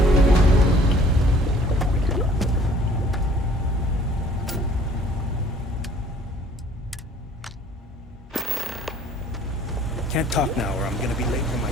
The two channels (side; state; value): both; normal; correlation 0.55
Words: Can't talk now or I'm gonna be late for my